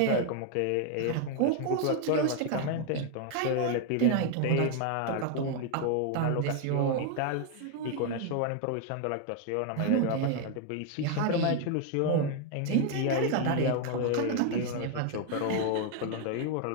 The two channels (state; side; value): different; both; correlation 0.00